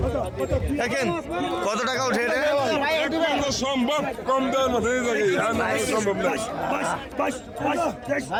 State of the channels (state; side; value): identical; both; correlation 1.00